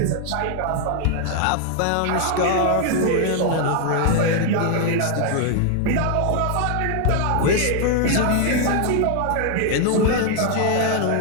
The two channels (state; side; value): different; both; correlation 0.00